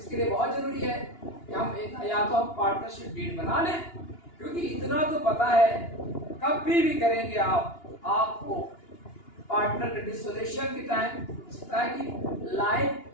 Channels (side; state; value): right; late; 2.9 ms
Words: लिए बहुत जरूरी है कि हम या तो हम पार्टनरशिप डील बना लें, क्योंकि इतना तो पता है कभी भी करेंगे आपको पार्टनर के डिसोल्यूशन के टाइम हो सकता है कि लाइफ